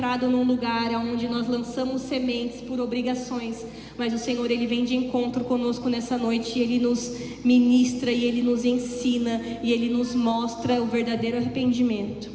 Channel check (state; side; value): identical; both; correlation 1.00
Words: num lugar onde nós lançamos sementes por obrigações, mas o Senhor, ele vem de encontro conosco nessa noite, e ele nos ministra, e ele nos ensina, e ele nos mostra o verdadeiro arrependimento.